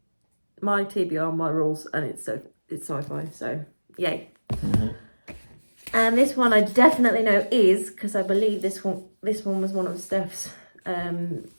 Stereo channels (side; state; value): both; inverted; correlation -1.00